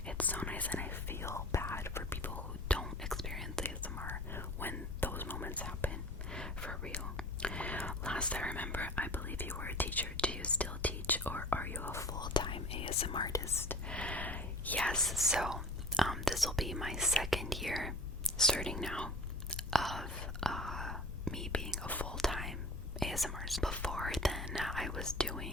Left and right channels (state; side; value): noise; left; rumble, 7 dB below the sound